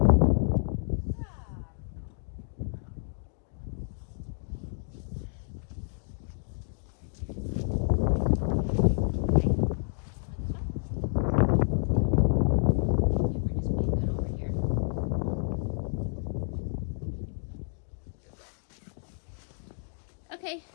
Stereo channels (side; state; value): right; silent; digital silence